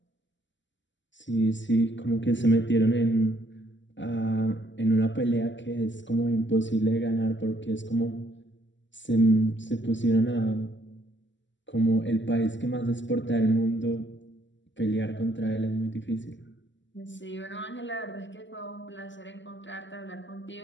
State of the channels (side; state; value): right; late; 0.54 ms